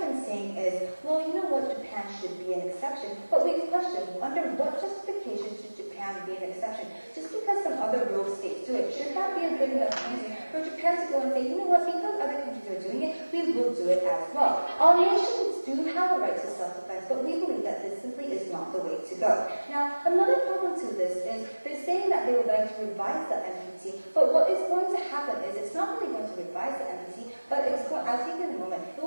been saying is, well, you know what, Japan should be an exception. But we question, under what justification should Japan be an exception? Just because some other rogue states do it, should that be a good enough reason for Japan to go and say, you know what, because other countries are doing it, we will do it as well. All nations do have a right to self-defense, but we believe that this simply is not the way to go. Now, another problem to this is they're saying that they would like to revise the NPT, but what is going to happen is it's not really going to revise the NPT, but it's going, I'll take it in a moment, it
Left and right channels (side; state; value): both; inverted; correlation -1.00